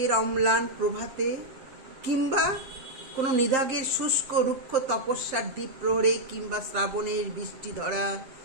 অম্লান প্রভাতে, কিংবা কোনো নিদাগের শুষ্ক রুক্ষ তপস্যার দ্বীপ প্রহরে, কিংবা শ্রাবণের বৃষ্টি ধরা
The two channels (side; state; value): left; late; 7.6 ms